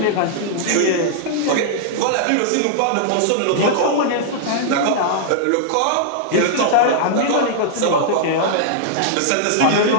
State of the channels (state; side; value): different; both; correlation -0.01